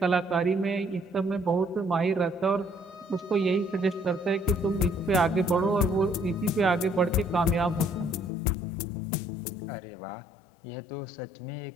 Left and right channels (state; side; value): drops out; right; at 8.3 s